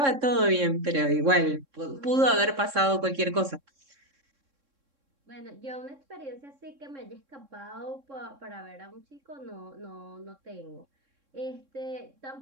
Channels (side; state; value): left; late; 3.6 ms